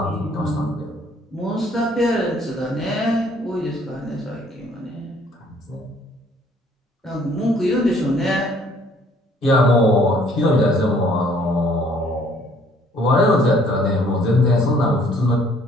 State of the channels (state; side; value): normal; both; correlation 0.60